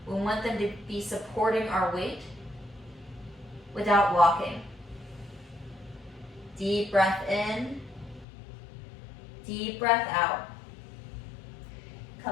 We want them to be supporting our weight without locking. Deep breath in, deep breath out.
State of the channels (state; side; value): drops out; right; at 8.2 s